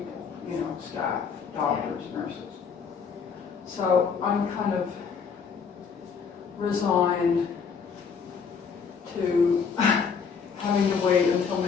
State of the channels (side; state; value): right; quieter; 6.1 dB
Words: staff, doctors, nurses. So I'm kind of resigned to having to wait until